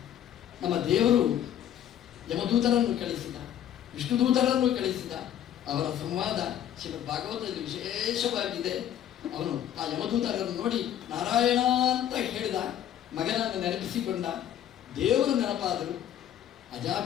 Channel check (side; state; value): right; quieter; 10.6 dB